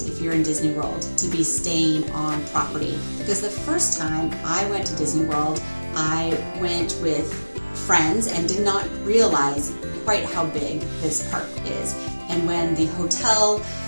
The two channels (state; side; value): inverted; both; correlation -1.00